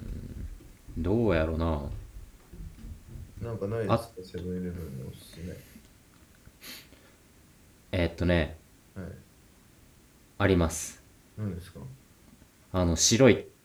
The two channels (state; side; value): identical; both; correlation 1.00